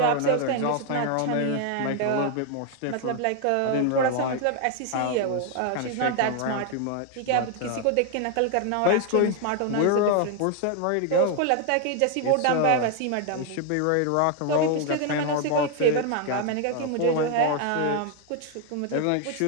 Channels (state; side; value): different; both; correlation 0.01